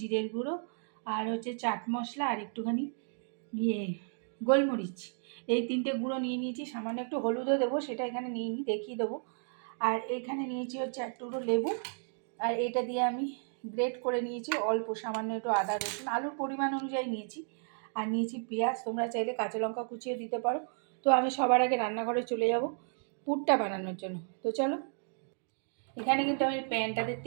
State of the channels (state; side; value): silent; left; 56 dB below the other